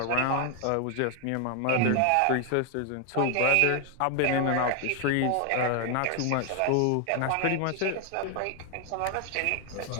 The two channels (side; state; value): both; different; correlation 0.01